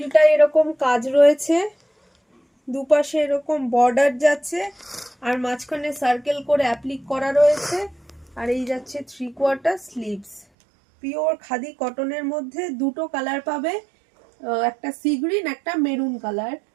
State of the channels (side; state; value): left; drops out; at 10.5 s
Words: এরকম কাজ রয়েছে, দুপাশে এরকম বর্ডার যাচ্ছে, আর মাঝখানে সার্কেল করে অ্যাপ্লিক করা রয়েছে। আর এই যাচ্ছে 3/4 স্লিভস, পিওর খাদি কটনের মধ্যে। দুটো কালার পাবে, একটা সি গ্রিন একটা মেরুন কালার।